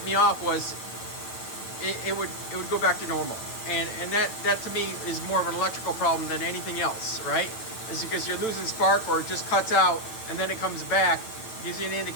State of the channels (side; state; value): right; late; 9.1 ms